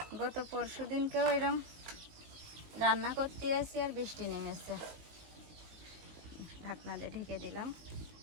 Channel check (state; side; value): late; left; 19 ms